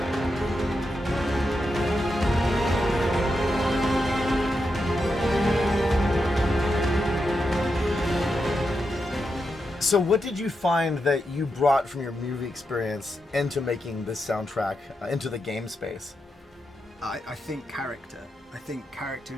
So what did you find that you brought from your movie experience into making this soundtrack, into the game space? I think character. I think character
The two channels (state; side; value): normal; both; correlation 0.86